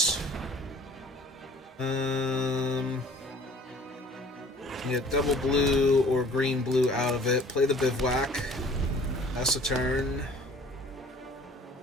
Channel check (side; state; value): both; normal; correlation 0.51